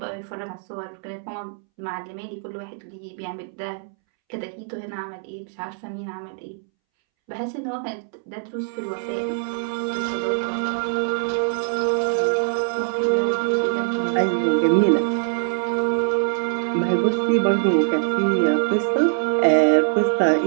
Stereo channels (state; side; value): silent; left; 63 dB below the other